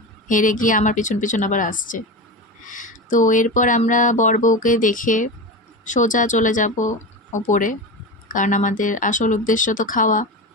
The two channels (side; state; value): both; normal; correlation 0.23